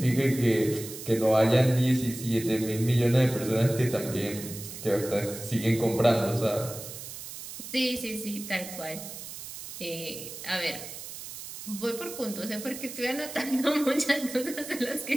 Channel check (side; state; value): right; noise; hiss, 11 dB below the sound